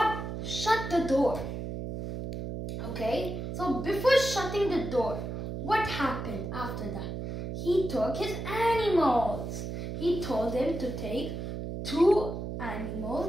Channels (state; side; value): noise; right; hum, 5 dB below the sound